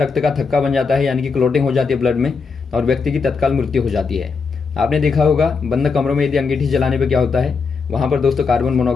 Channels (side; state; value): right; quieter; 5.0 dB